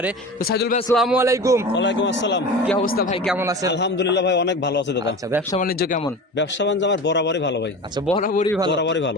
তো সাইদুল ভাই আসসালামু আলাইকুম। ওয়ালাইকুম আসসালাম। কি অবস্থা ভাই, কেমন আছেন? আলহামদুলিল্লাহ ভাই, অনেক ভালো আছে দাদা। আচ্ছা, ব্যবসা বাণিজ্য কেমন? ব্যবসা বাণিজ্য আমার বরাবরই ভালো ভাই। আচ্ছা, বরাবরই ভালো। বরাবরই ভালো।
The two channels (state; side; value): normal; both; correlation 0.32